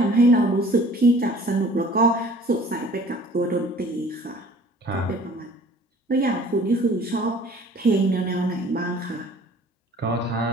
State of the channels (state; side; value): normal; both; correlation 0.50